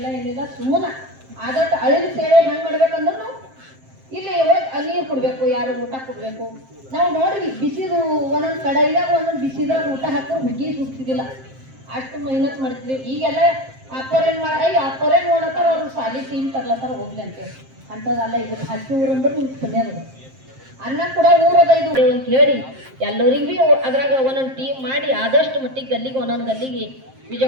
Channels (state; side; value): late; left; 7.6 ms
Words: ಏನಿಲ್ಲ ಸುಮ್ಮನೆ ಆದಷ್ಟು ಅಳಿನ ಸೇವೆ ಹೆಂಗೆ ಮಾಡ್ಬೇಕಂದ್ರೆ ನಾವು ಇಲ್ಲಿ ನೀರು ಕೊಡಬೇಕು ಯಾರು ಊಟ ಕೊಡಬೇಕು ನಾವು ನೋಡ್ರಿ ಬಿಸಿದು ಒಂದೊಂದು ಕಡೆಯಾಗ ಒಂದೊಂದು ಬಿಸಿದಾಗ ಊಟ ಹಾಕೋರು ಹುಗ್ಗಿ ಸುಡ್ತಿದ್ದಿಲ್ಲ ಅಷ್ಟು ಮೆಹನತ್ ಮಾಡ್ತಿದ್ವಿ ಈಗೆಲ್ಲ ಅಪ್ಪರೇನು ಅಪ್ಪರೇನು ನೋಡತ್ತಾರ ಅವ್ರು ಸಾಲಿ ಟೀಮ್ ತರ್ಲತ್ತಾರ ಹೋಗ್ಲಿ ಅಂತೇಳಿ ಅಂಥದ್ದಲ್ಲ ಇದು ಹಸಿ ಊರು ಅಂದ್ರೆ ನಿಮ್ಗೆ ಪುಣ್ಯದ ಅನ್ನ ಕೂಡ ಊರದ ಇದು ಅಂತ ಹೇಳಿ ಎಲ್ಲರಿಗೂ ಭೀ ಅದ್ರಾಗ ಒಂದೊಂದು ಟೀಮ್ ಮಾಡಿ ಆದಷ್ಟು ಮಟ್ಟಿಗೆ ಗಲ್ಲಿಗೆ ಒಂದೊಂದು ಗಲ್ಲಿಗೆ